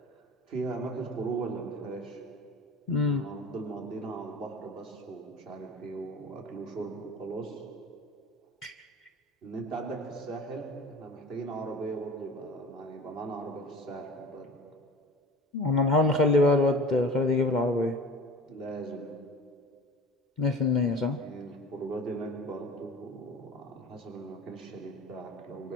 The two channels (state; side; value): normal; both; correlation 0.39